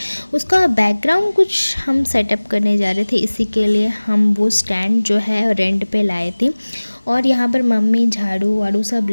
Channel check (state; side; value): inverted; both; correlation -1.00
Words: उसका बैकग्राउंड कुछ हम सेटअप करने जा रहे थे। इसी के लिए हम वो स्टैंड जो है रेंट पे लाए थे। और यहाँ पर मम्मी झाड़ू वाड़ू सब